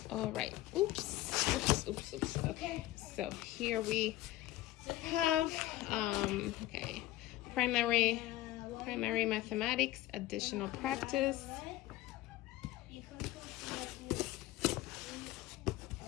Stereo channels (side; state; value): right; quieter; 16.1 dB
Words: all right. Oops. Okay, so here we have, okay, primary mathematics, additional practice.